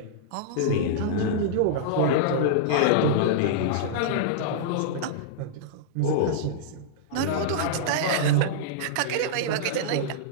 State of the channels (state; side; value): different; both; correlation -0.02